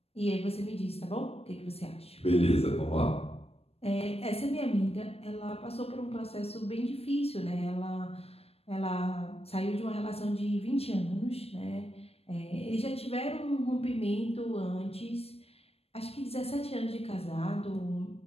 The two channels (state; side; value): late; right; 0.29 ms